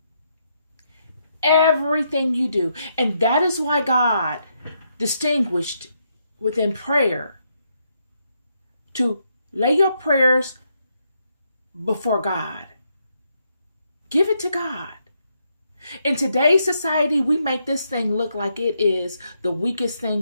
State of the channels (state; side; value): inverted; both; correlation -0.78